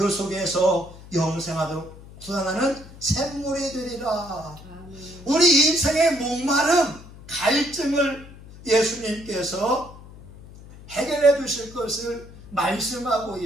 속에서 영생하도록 솟아나는 샘물이 되리라. 아멘. 우리 인생의 목마름, 갈증을 예수님께서 해결해 주실 것을 말씀하고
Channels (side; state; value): left; noise; hum, 18 dB below the sound